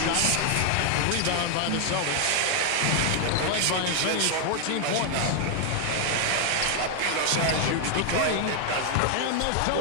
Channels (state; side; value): different; both; correlation 0.00